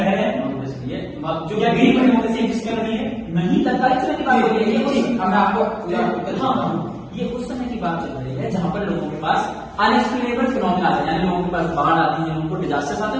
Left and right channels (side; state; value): both; identical; correlation 1.00